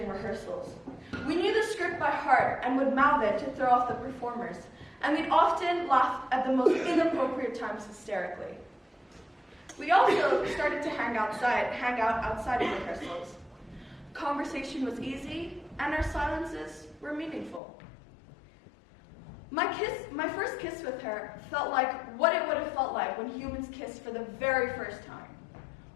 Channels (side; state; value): right; drops out; at 17.6 s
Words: rehearsals. We knew the script by heart and would mouth it to throw off the performers, and we'd often laugh at the most inappropriate times hysterically. We also started to hang out outside of rehearsals. Conversation was easy, and our silences were meaningful. My first kiss with her felt like what it would have felt like when humans kissed for the very first time.